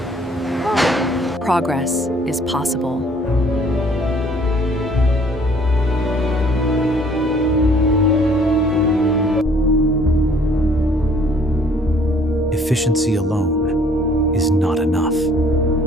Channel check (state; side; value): normal; both; correlation 0.58